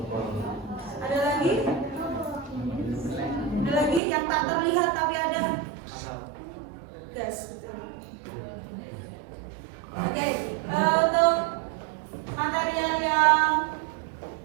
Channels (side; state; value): left; drops out; at 4.0 s